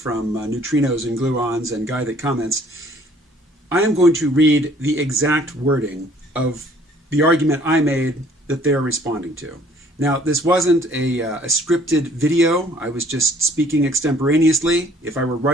Neutrinos and Gluons and Guy That Comments, I am going to read the exact wording of the argument I made that they're responding to. Now, this wasn't a scripted video. I was just speaking extemporaneously. If I were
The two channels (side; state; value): both; normal; correlation 0.58